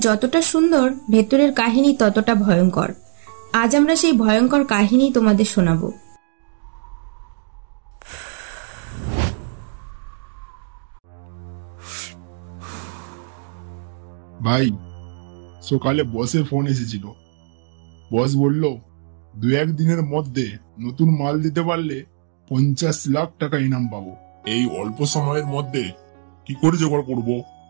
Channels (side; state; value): left; silent; digital silence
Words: যতটা সুন্দর, ভেতরের কাহিনী ততটা ভয়ঙ্কর। আজ আমরা সেই ভয়ঙ্কর কাহিনী তোমাদের শোনাবো। ভাই, সকালে বসের ফোন এসেছিল। বস বলল 2-1 দিনের মধ্যে নতুন মাল দিতে পারলে 50 লাখ টাকা ইনাম পাবো। এই অল্প সময়ের মধ্যে কি করে জোগাড় করবো?